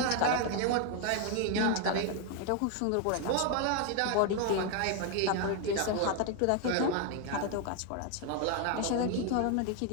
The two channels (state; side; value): different; both; correlation 0.01